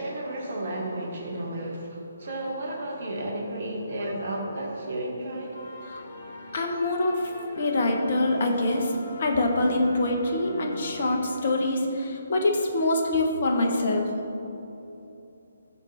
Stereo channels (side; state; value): both; inverted; correlation -0.73